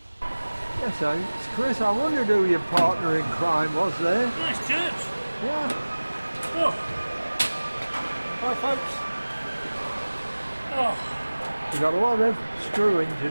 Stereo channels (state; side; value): inverted; both; correlation -1.00